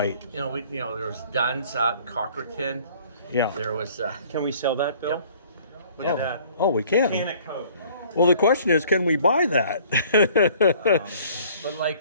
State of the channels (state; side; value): inverted; both; correlation -0.55